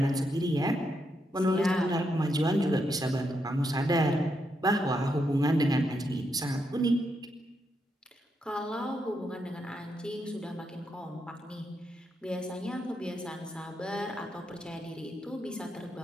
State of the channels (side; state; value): both; normal; correlation 0.81